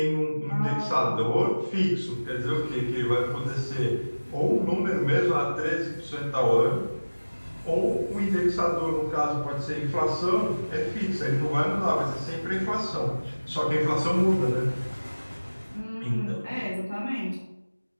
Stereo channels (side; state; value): both; inverted; correlation -1.00